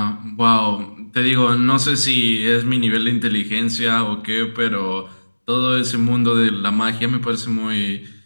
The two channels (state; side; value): inverted; both; correlation -1.00